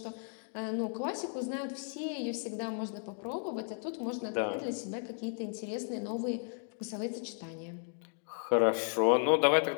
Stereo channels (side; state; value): right; silent; 55 dB below the other